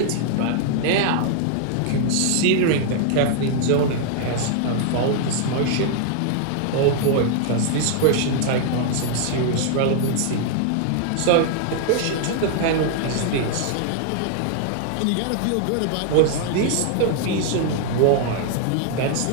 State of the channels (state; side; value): different; both; correlation 0.00